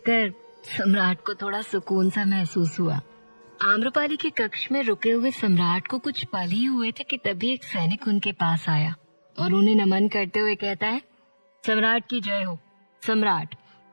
सम्राट को थोड़ा सुकून सा महसूस हुआ। आम्रपाली के कक्ष में रुके हुए सम्राट को कुछ पल ही हुए थे कि तभी एक सैनिक उनके पास आया और उन्हें नमन करते हुए कहता है, सम्राट की जय हो। सम्राट,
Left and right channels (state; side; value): inverted; both; correlation -1.00